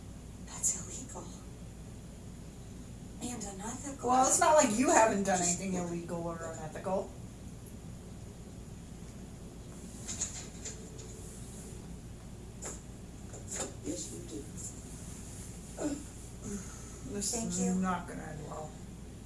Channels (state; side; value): identical; both; correlation 1.00